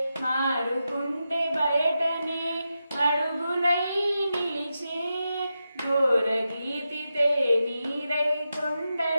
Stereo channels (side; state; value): both; inverted; correlation -0.89